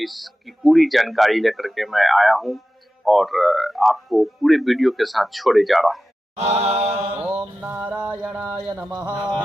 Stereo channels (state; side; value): normal; both; correlation 0.94